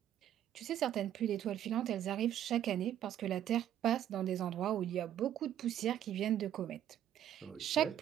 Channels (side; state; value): left; quieter; 11.0 dB